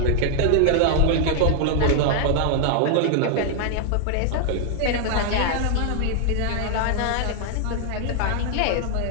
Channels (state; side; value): different; both; correlation 0.00